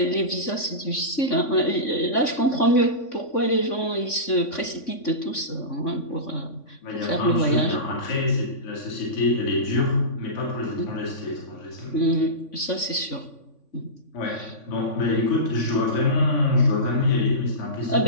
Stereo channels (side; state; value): right; late; 3.5 ms